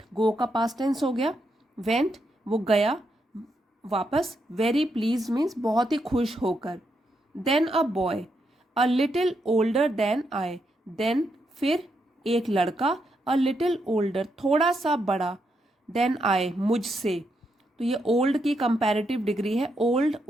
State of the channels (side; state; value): both; normal; correlation 0.81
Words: गो का पास्ट टेंस हो गया, वेंट, वो गया वापस, वेरी प्लीज मीन्स बहुत ही खुश होकर। Then a boy a little older than I, then फिर एक लड़का, अ लिटिल ओल्डर थोड़ा सा बड़ा, देन आई मुझसे, तो ये ओल्ड की कंपैरेटिव डिग्री है, ओल्ड,